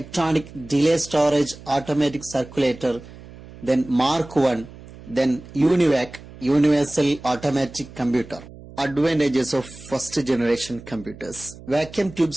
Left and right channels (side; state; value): right; noise; hum, 18 dB below the sound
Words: delay storage automatic circulator, then Mark I, then UNIVAC, universal automatic computer. Advantages of first generation computers. Vacuum